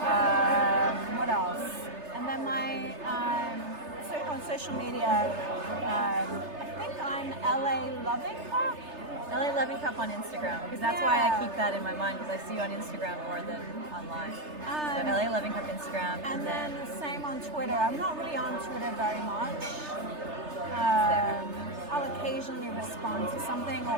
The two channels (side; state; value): left; late; 3.3 ms